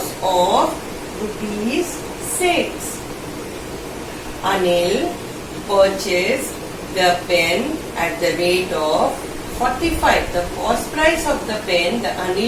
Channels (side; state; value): both; identical; correlation 1.00